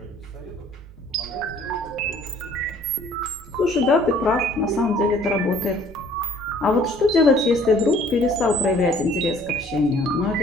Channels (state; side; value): noise; right; hum, 23 dB below the sound